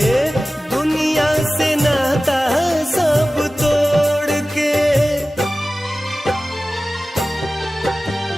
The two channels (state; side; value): normal; both; correlation 0.96